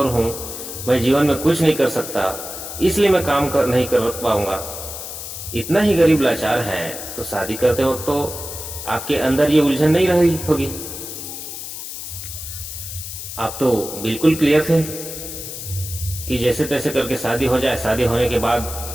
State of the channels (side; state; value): left; noise; hiss, 9 dB below the sound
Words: हूँ, मैं जीवन में कुछ नहीं कर सकता, इसलिए मैं काम कर नहीं कर पाऊंगा। इतना ही गरीब लाचार हैं तो शादी करते वक्त तो आपके अंदर ये उलझन नहीं रही होगी। आप तो बिल्कुल क्लियर थे कि जैसे तैसे करके शादी हो जाए, शादी होने के बाद